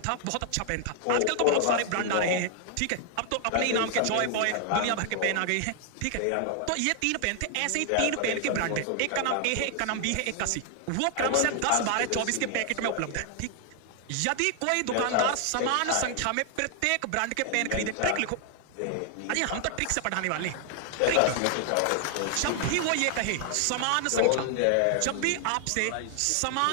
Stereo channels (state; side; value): different; both; correlation 0.00